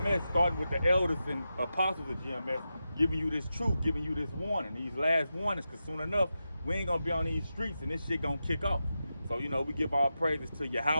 starting with the elders and apostles of GMS, giving you this truth, giving you this warning, these last warnings, because soon enough, we ain't gonna be on these streets and this shit gonna kick off. So, you know, we give our praises to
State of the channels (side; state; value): both; inverted; correlation -0.90